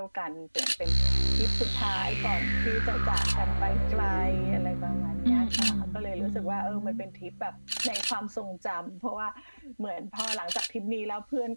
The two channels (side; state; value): both; inverted; correlation -1.00